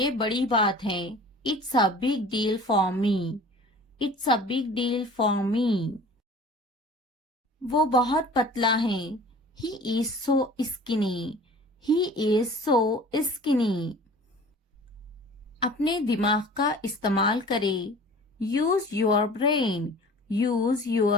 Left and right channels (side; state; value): both; normal; correlation 0.44